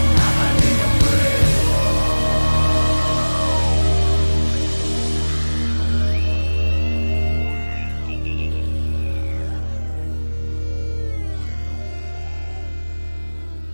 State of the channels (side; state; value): both; inverted; correlation -1.00